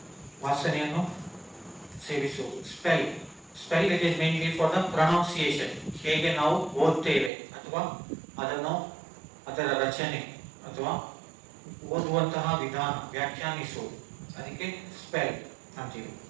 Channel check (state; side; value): drops out; left; at 7.3 s